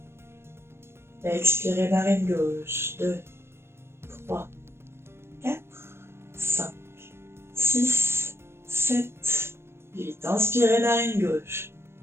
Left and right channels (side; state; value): left; late; 0.12 ms